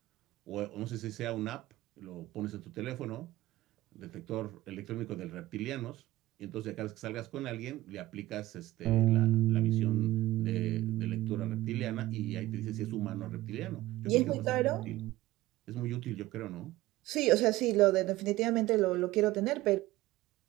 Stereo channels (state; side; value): quieter; left; 16.8 dB